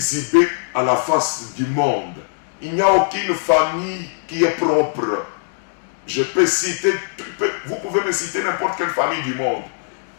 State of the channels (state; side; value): silent; right; digital silence